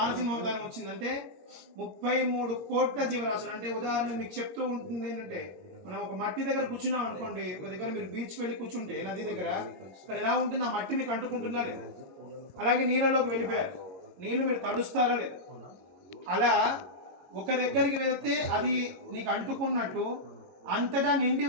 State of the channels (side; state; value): left; late; 22 ms